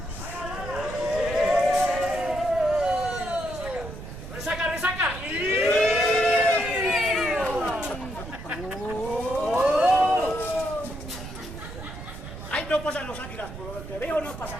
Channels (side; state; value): right; noise; rumble, 11 dB below the sound